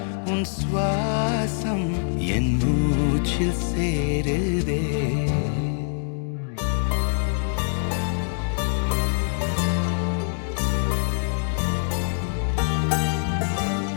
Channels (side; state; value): right; silent; digital silence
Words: உன் சுவாசம் என் மூச்சில் சேருதே.